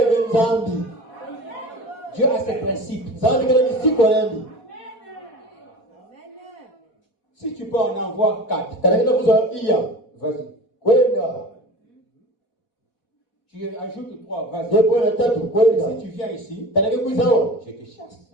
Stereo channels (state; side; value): late; right; 4.1 ms